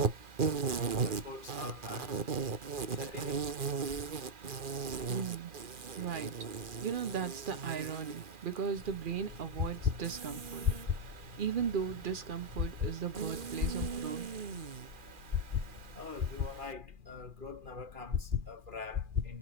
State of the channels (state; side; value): late; left; 2.4 ms